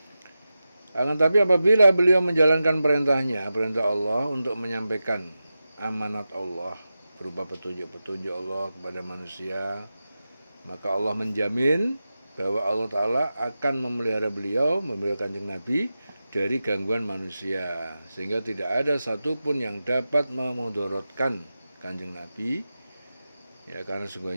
Akan tapi apabila beliau menjalankan perintah Allah untuk menyampaikan amanat Allah berupa petunjuk-petunjuk Allah kepada manusia, maka Allah menjamin bahwa Allah Ta'ala akan memelihara beliau, memelihara Kanjeng Nabi dari gangguan manusia, sehingga tidak ada satupun yang dapat memudaratkan Kanjeng Nabi, ya, karena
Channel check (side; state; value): both; inverted; correlation -0.93